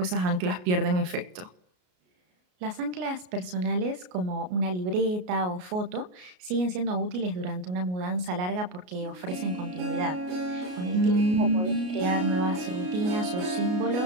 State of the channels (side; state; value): left; late; 33 ms